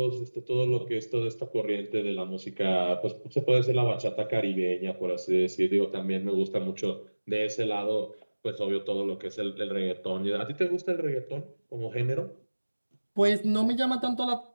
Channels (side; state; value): both; inverted; correlation -1.00